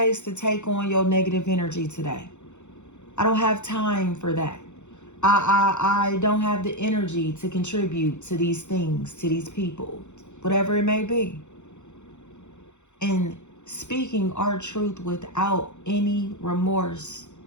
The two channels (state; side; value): late; right; 0.83 ms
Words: to take on your negative energy today. I don't have time for that. I don't have the energy to contribute to these things, to these people, whatever it may be. And speaking our truth without any remorse.